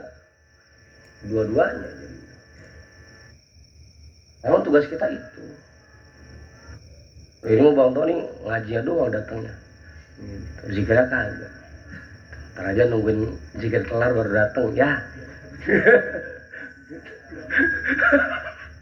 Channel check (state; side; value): identical; both; correlation 1.00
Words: Dua-duanya. Memang tugas kita itu. Ini mau Bang Tony ngajinya doang datangnya. Zikirnya kagak. Ntar aja nungguin zikir kelar baru datang ya.